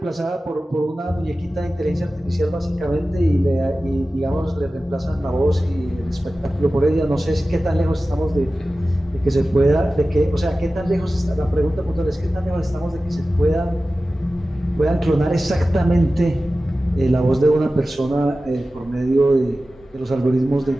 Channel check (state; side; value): normal; both; correlation 0.95